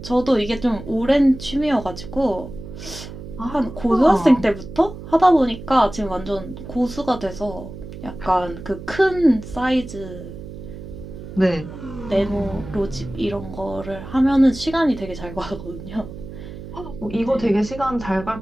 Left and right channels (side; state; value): right; noise; hum, 12 dB below the sound